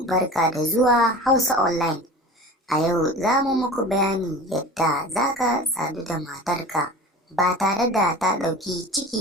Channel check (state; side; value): normal; both; correlation 0.37